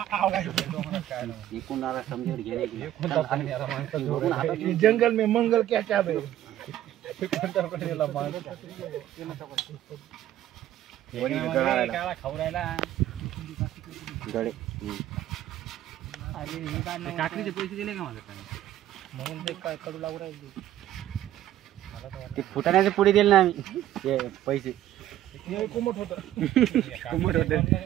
जंगल में मंगल क्या चाहे खाऊ राहिला काकडीचे पैसे दिले का माझ्या म्हणून ते काय कडू लागू राहिले ते फुटाण्याचे पुढे दिले ना आम्ही पैसे. कोमट होत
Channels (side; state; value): left; quieter; 12.7 dB